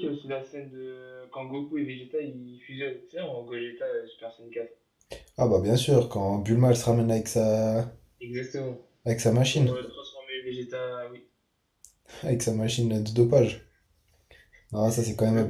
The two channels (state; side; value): identical; both; correlation 1.00